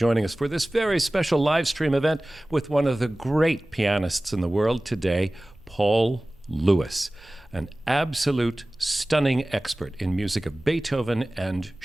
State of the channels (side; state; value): both; normal; correlation 0.98